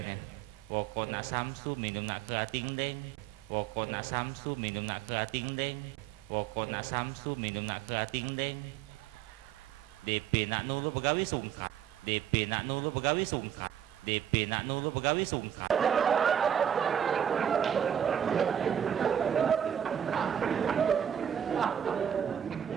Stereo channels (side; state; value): left; quieter; 9.4 dB